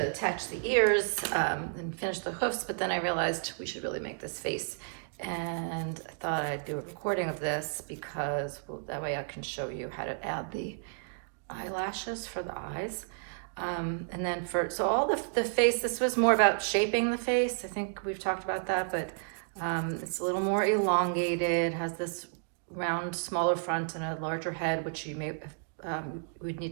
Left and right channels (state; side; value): silent; left; digital silence